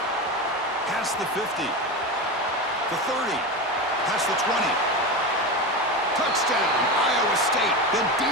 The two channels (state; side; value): normal; both; correlation 0.21